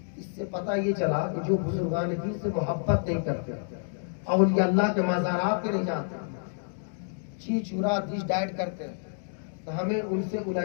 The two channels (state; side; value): silent; right; digital silence